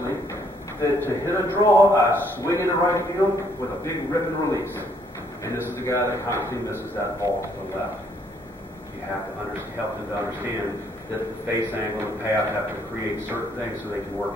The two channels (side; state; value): both; normal; correlation 0.67